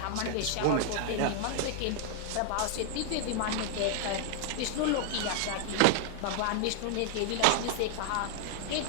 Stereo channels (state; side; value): different; both; correlation 0.00